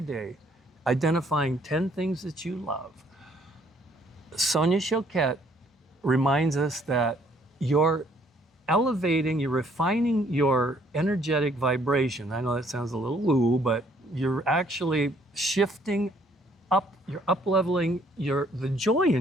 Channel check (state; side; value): normal; both; correlation 0.64